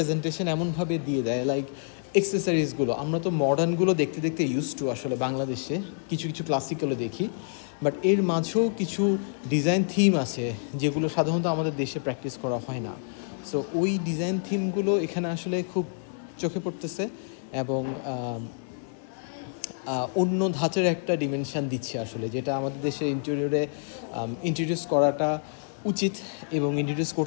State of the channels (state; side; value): silent; right; digital silence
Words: এমনভাবে দিয়ে দেয়, লাইক এক্সেসরিজগুলো আমরা তো মডার্নগুলো দেখতে দেখতে ইউজ টু আসলে বাংলাদেশে, কিছু কিছু ক্লাসিকগুলো দেখি, বাট এর মাঝেও কিছু ডিজাইন থিম আছে যেগুলো সাধারণত আমাদের দেশে প্র্যাকটিস করা হয় না। সো ওই ডিজাইন থিমগুলো এখানে আসলে খুব চোখে পড়তেছে এবং অন্য ধাঁচের একটা ডিমেনশান দিচ্ছে আসলে, যেটা আমাদের দেশের ইন্টেরিয়রে ইন্ট্রোডিউস করাটা উচিত। এবং ইন্ট্রোডিউস